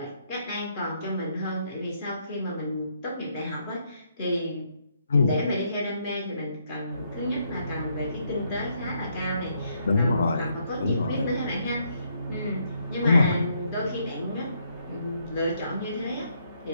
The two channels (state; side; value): inverted; both; correlation -0.73